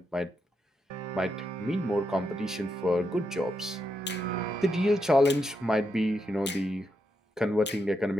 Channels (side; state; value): both; normal; correlation 0.83